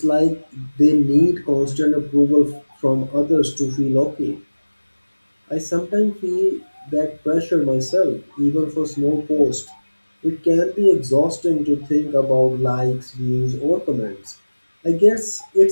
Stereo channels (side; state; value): both; inverted; correlation -1.00